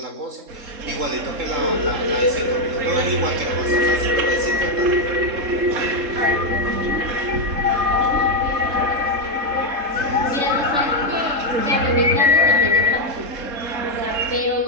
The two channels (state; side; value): late; left; 3.7 ms